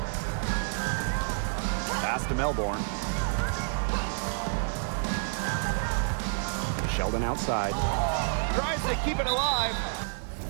Pass to Melbourne. Sheldon outside. Tries to keep it alive.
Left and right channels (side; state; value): left; silent; 59 dB below the other